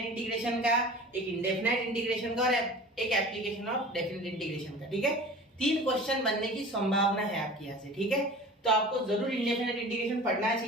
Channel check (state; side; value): normal; both; correlation 0.39